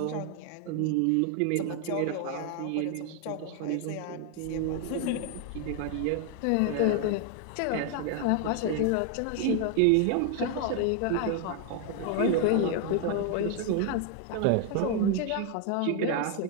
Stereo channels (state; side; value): different; both; correlation 0.00